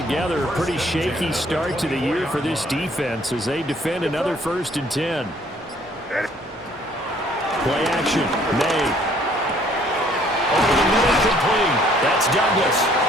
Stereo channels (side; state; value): both; normal; correlation 0.61